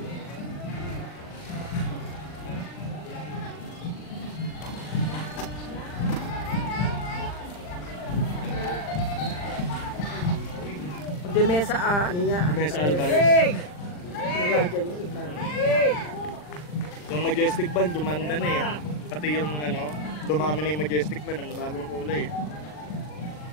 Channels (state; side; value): late; right; 40 ms